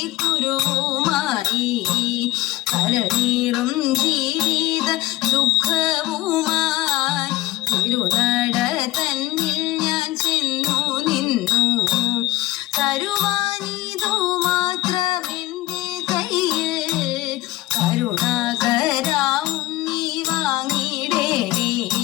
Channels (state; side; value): quieter; right; 17.9 dB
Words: കുരുവുമായി കരനീറും ജീവിത ദുഃഖവുമായി തിരുനട തന്നിൽ ഞാൻ ചെന്നു നിന്നു തരുവാനിതു മാത്രമെന്റെ കയ്യിൽ കരുണാകരാവുണ്ണി വാങ്ങിടേണേ